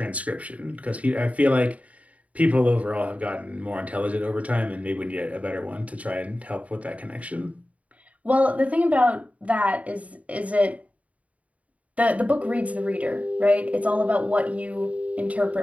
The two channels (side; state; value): left; late; 0.068 ms